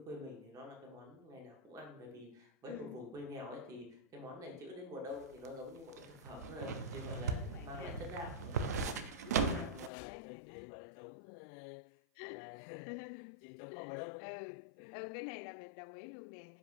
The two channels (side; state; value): right; drops out; at 9.9 s